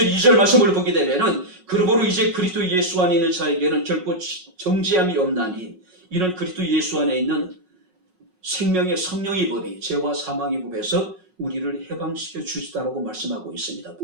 2절 말씀을 보게 되면은 그러므로 이제 그리스도 예수 안에 있는 자에게는 결코 정죄함이 없나니 이는 그리스도 예수 안에 있는 생명의 성령의 법이 죄와 사망의 법에서 우리를 해방시켜 주시다라고 말씀하고 있습니다.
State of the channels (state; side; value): late; left; 5.4 ms